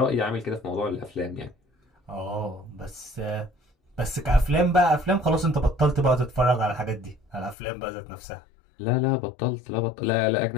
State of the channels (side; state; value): right; drops out; at 7.6 s